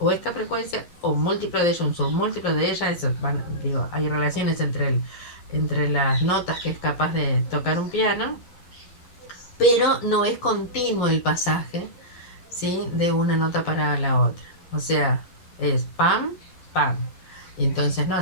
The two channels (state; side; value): late; right; 11 ms